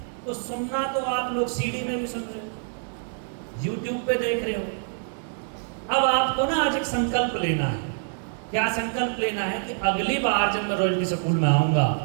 तो सुनना तो आप लोग सीडी में भी सुन रहे हो, यूट्यूब पे देख रहे हो। अब आपको ना आज एक संकल्प लेना है। क्या संकल्प लेना है? कि अगली बार जब मैं रॉयल्टी स्कूल में आऊंगा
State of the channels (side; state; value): left; silent; 61 dB below the other